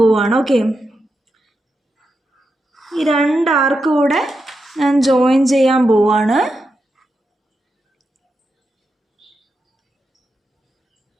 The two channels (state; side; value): normal; both; correlation 0.87